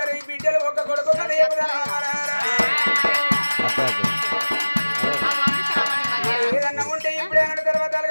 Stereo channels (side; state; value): both; inverted; correlation -1.00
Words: బిడ్డలు ఒక కొడుకు ఒక దేవతరా ఏదన్నా ఉంటే ఇప్పుడే అన్న తర్వాత